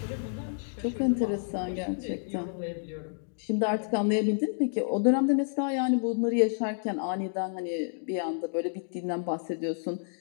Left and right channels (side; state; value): right; silent; digital silence